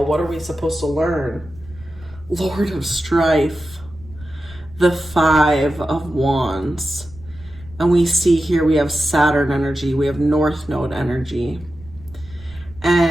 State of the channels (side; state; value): right; noise; rumble, 20 dB below the sound